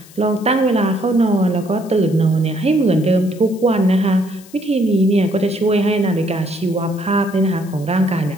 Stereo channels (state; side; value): noise; left; hiss, 23 dB below the sound